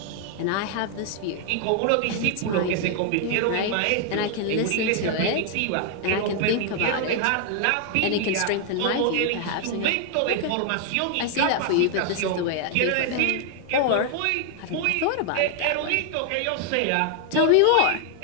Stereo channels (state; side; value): different; both; correlation 0.00